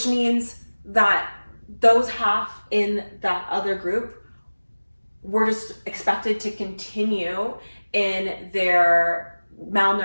means that those half in that other group were just expected to continue in their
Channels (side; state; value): both; inverted; correlation -1.00